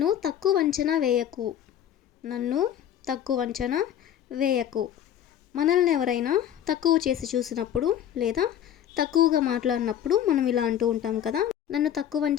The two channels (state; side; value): quieter; right; 10.4 dB